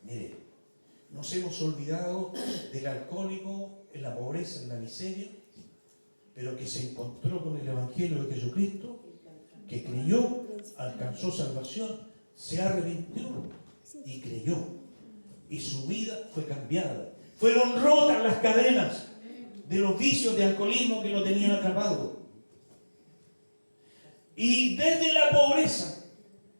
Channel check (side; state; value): both; inverted; correlation -1.00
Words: Mire, nos hemos olvidado del alcohólico en la pobreza, en la miseria, pero que se encontró con el Evangelio de Jesucristo, que creyó, alcanzó salvación, se arrepintió y creyó. Y su vida fue cambiada. Fueron rotas las cadenas de los vicios de alcoholismo que lo tenían atrapado. Y desde la pobreza,